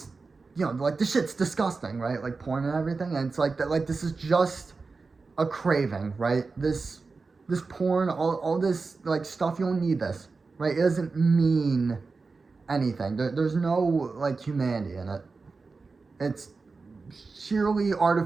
you know, like the shit's disgusting, right? Like porn and everything, and it's like that. Like this is just a craving, right? This porn, all this like stuff. You don't need this, right? It doesn't mean anything. There's no like humanity in it. It's sheerly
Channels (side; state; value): left; quieter; 4.2 dB